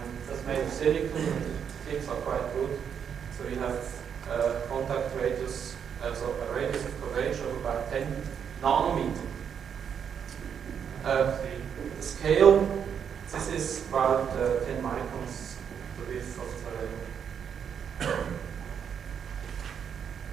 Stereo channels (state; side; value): quieter; left; 7.7 dB